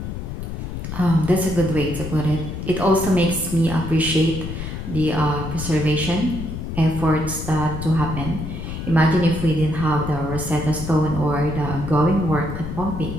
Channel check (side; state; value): left; noise; rumble, 7 dB below the sound